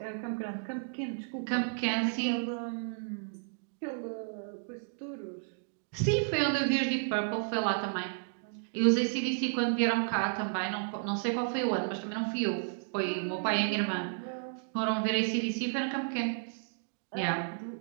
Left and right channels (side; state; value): left; silent; digital silence